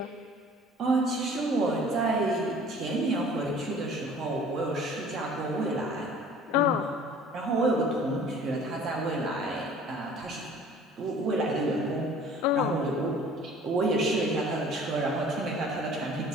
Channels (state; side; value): normal; both; correlation 0.49